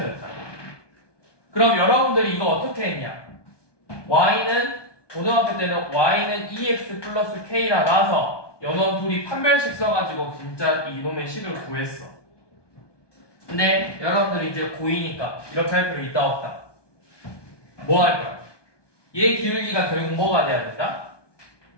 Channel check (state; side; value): late; right; 1.2 ms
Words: 그럼 여러분들이 이거 어떻게 했냐? y는 고등학교 때는 y는 2x 플러스 k라 나와서 연원 둘이 판별식 써가지고 진짜 이놈의 식을 구했어. 근데 여러분들이 이제 고2니까 이렇게 할 필요 있다 없다? 뭐 할 거야? 얘 기울기가 결국 뭐가 돼야 된다?